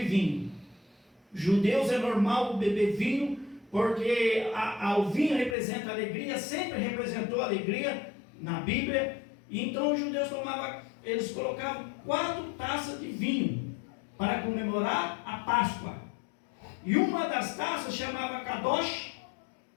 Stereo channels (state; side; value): drops out; right; at 5.6 s